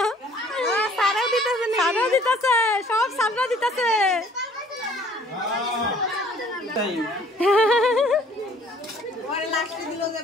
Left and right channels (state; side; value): normal; both; correlation 0.56